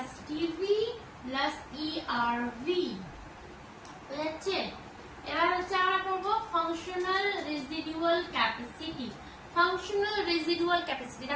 টিভি প্লাস ইআরভি, বুঝাচ্ছে। এবার হচ্ছে আমরা করবো ফাংশনাল রেসিডুয়াল ক্যাপাসিটি।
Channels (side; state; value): both; identical; correlation 1.00